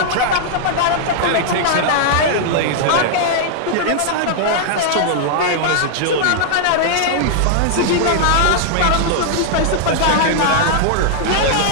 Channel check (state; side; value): different; both; correlation -0.01